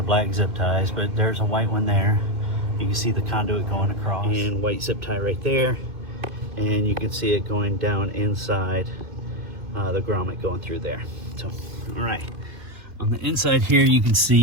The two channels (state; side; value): late; left; 2.5 ms